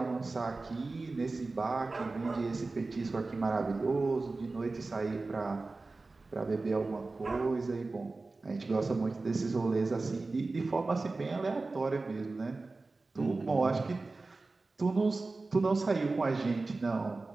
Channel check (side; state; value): left; quieter; 3.5 dB